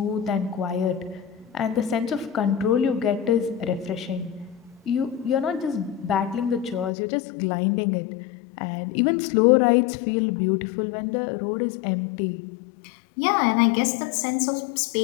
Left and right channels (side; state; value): right; drops out; at 6.9 s